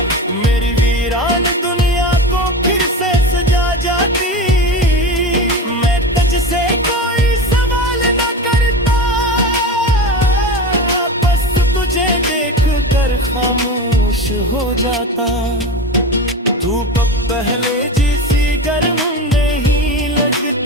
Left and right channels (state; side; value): normal; both; correlation 0.26